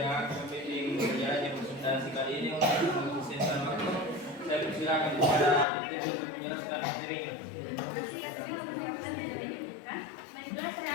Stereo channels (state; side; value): drops out; right; at 5.7 s